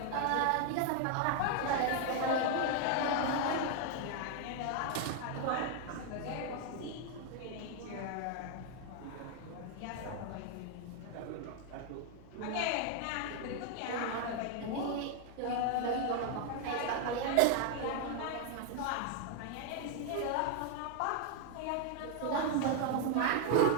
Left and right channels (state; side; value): different; both; correlation 0.00